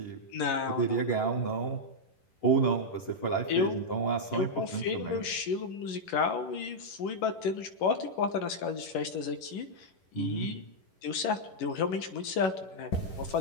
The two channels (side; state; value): right; late; 11 ms